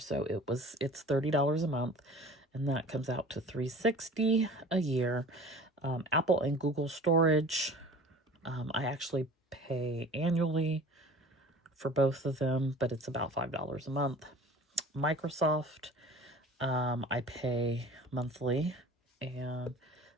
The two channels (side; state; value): both; normal; correlation 0.44